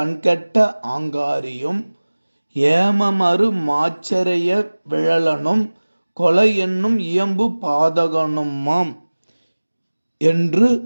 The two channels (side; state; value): both; inverted; correlation -1.00